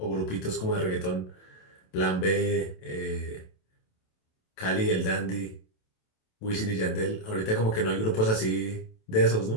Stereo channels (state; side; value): late; right; 27 ms